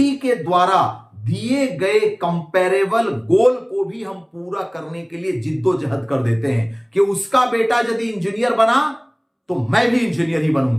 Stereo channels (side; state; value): both; identical; correlation 1.00